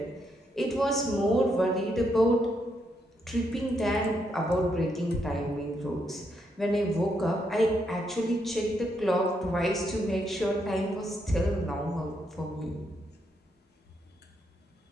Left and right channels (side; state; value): both; normal; correlation 0.78